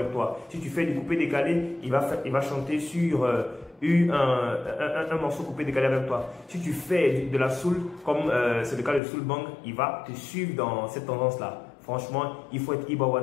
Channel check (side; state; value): right; drops out; at 9.0 s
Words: toi. Si tu fais du coupé décalé, il va chanter sur un morceau coupé décalé avec toi. Si tu fais de la soul, comme c'est le cas de Soul Bang, il va te suivre dans cette tendance-là. Franchement, il faut être